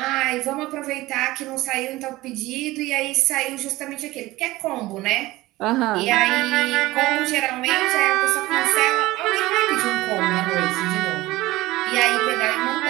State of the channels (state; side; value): quieter; left; 18.4 dB